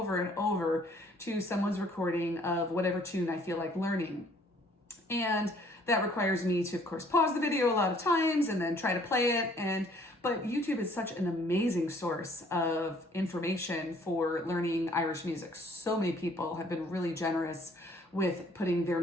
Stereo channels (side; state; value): both; normal; correlation 0.60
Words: and over to someone's recording of whatever tune I feel like learning. And that requires me to, of course, pause the video a lot of times and then try to play it. But YouTube is such an amazing source of information for learning Irish music. So many people have been really generous with putting their